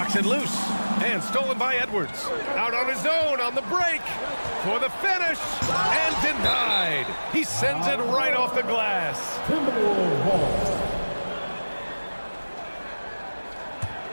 it loose. And stolen by Edwards. Out on his own on the break. For the finish. And denied. He sends it right off the glass.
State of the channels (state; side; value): inverted; both; correlation -1.00